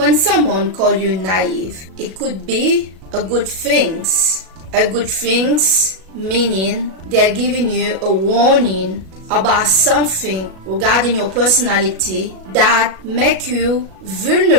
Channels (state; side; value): late; left; 37 ms